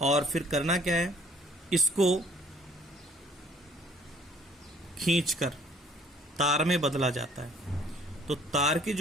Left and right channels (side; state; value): both; normal; correlation 0.59